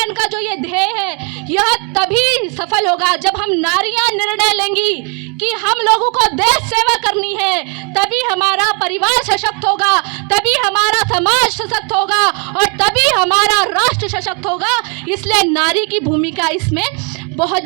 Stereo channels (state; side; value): quieter; left; 35.8 dB